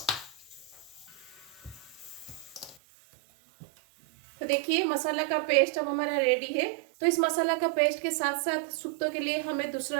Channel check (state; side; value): drops out; left; at 2.8 s